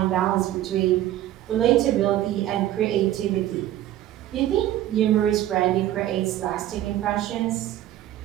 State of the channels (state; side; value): quieter; left; 13.3 dB